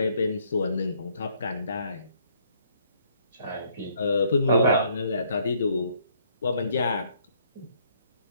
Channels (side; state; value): both; inverted; correlation -0.66